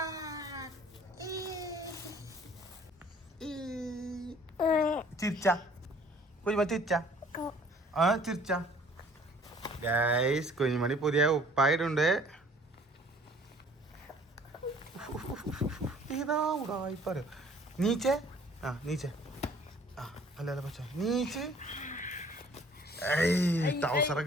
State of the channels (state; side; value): normal; both; correlation 0.54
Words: ചിരിച്ച കുഞ്ഞുമണി ചിരിച്ച ചിരിച്ച. ഗൈസ് കുഞ്ഞുമണി പുതിയ ഉപ്പായിട്ടുണ്ട്. ഇതാ ഉടായിപ്പോ നീച്ചേ. നീച്ചേ. അല്ല പച്ച നീച്ച്.